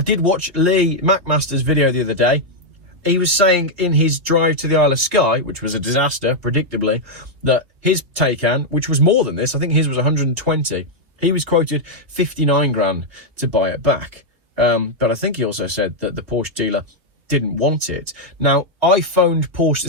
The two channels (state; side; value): late; left; 2.7 ms